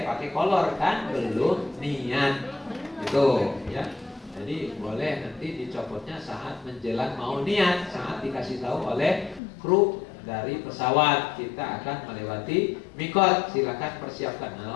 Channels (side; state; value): right; drops out; at 9.4 s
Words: pakai kolor kan, belum niat gitu ya. Jadi boleh nanti dicopotnya saat menjelang mau niat, saat dikasih tahu oleh kru dari pesawat kita akan melewati mikot, silakan persiapkan.